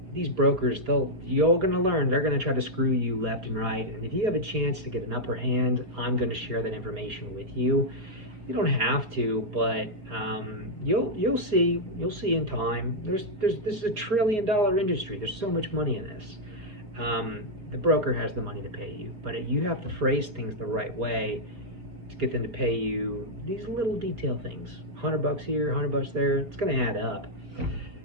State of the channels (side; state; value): left; late; 4.6 ms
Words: these brokers, you're going to learn, they're going to try to screw you left and right. And if you have a chance to get an upper hand, I'm going to share that information with you. You don't have to, but you'll see in time. This is a $1 trillion industry. There's so much money in this. The broker has the money to pay you, but you have to phrase things the right way to get them to pay you these little detail things. $100 here, $100 there. It's going to add up.